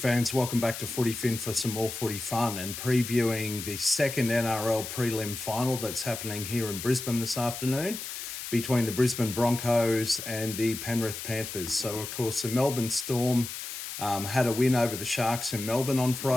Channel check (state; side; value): noise; left; hiss, 8 dB below the sound